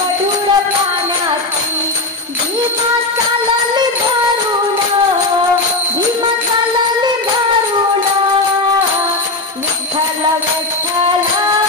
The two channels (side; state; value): right; quieter; 3.1 dB